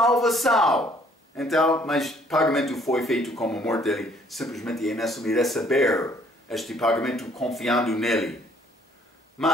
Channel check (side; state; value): both; normal; correlation 0.62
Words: Então, mas o pagamento foi feito como morte dele, simplesmente é necessário receber este pagamento confiando nele.